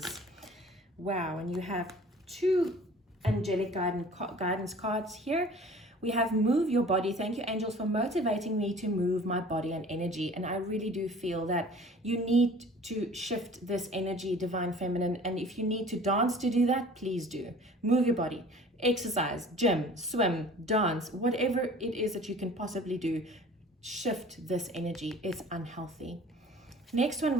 Wow, and you have two angelic guidance cards here. We have move your body. Thank you, angels, for motivating me to move my body and energy. And I really do feel that you need to shift this energy, divine feminine. And if you need to dance to do that, please do. Move your body, exercise, gym, swim, dance, whatever it is that you can possibly do. Shift this energy. It's unhealthy. Next one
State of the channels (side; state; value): both; normal; correlation 0.47